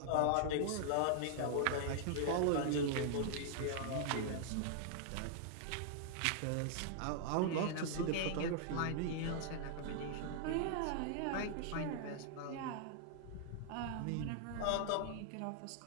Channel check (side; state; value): both; different; correlation -0.01